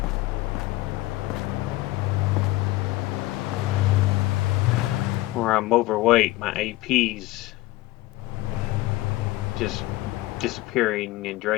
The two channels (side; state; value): right; quieter; 18.1 dB